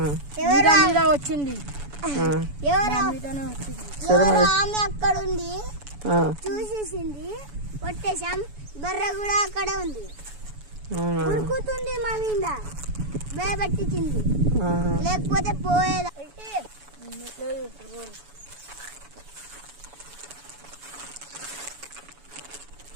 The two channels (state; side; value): late; left; 7.0 ms